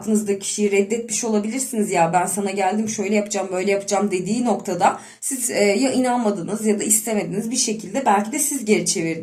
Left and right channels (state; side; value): identical; both; correlation 1.00